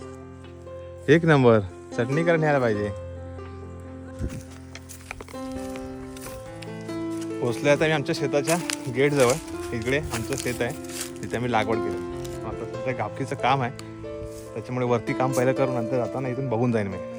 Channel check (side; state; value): both; identical; correlation 1.00